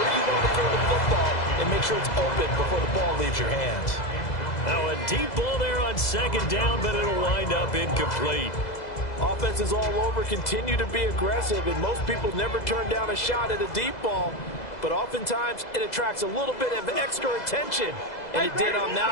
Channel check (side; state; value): right; late; 2.0 ms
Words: where you want to throw the football and make sure it's open before the ball leaves your hands. Now a deep ball there on second down, but it'll wind up incomplete. Offenses all over continue to be aggressive, and most people never turn down a shot at a deep ball. But oftentimes, it attracts a little bit of extra attention. And it did on